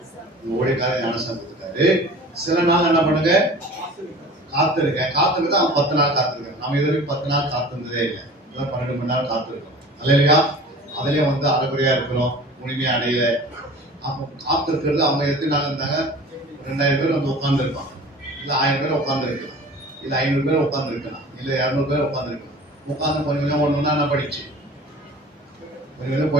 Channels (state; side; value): normal; both; correlation 0.42